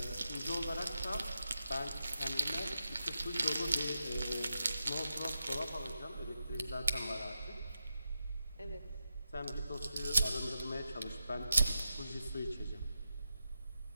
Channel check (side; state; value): both; inverted; correlation -0.88